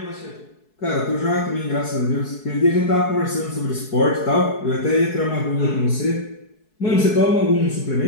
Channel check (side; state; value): right; late; 4.7 ms